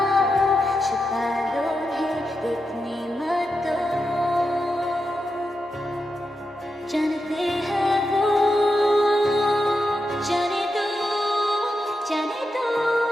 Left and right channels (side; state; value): both; normal; correlation 0.87